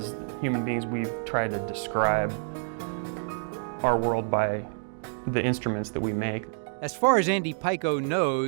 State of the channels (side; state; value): left; silent; digital silence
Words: human beings, we've tried to describe our world by the instruments that we make. As far as Andy Paiko